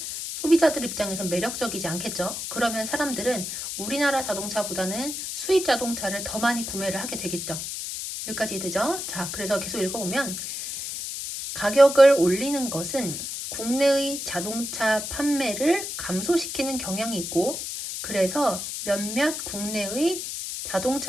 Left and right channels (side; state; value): left; noise; hiss, 5 dB below the sound